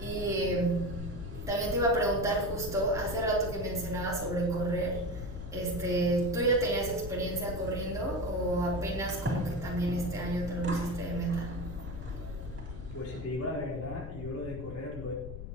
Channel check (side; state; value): left; noise; rumble, 8 dB below the sound